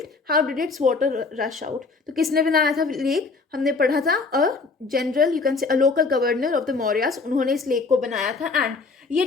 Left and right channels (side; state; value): right; quieter; 4.2 dB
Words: how did its water rush out. तो किसने बनाया था लेक, हमने पढ़ा था a general, you can say a local governor of the Mauryas, उन्होंने इस लेक को बनाया था. एंड ये